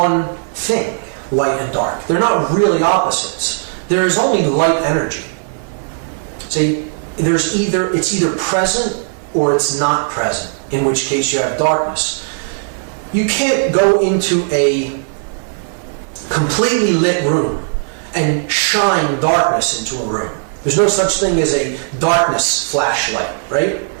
thing, light and dark. They're not really opposites. There is only light energy. See, it's either present or it's not present, in which case you have darkness. You can't go into a completely lit room and shine darkness into a room. There's no such thing as a darkness flashlight, right?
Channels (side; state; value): left; silent; 55 dB below the other